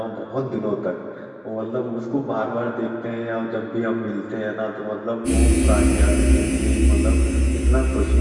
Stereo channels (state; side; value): identical; both; correlation 1.00